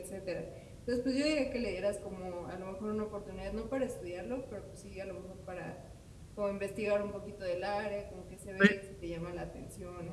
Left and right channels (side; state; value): both; identical; correlation 1.00